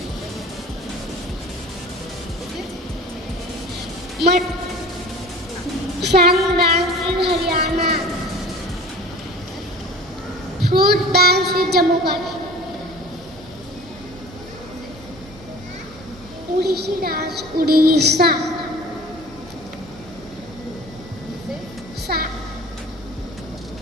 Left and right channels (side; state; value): both; normal; correlation 0.41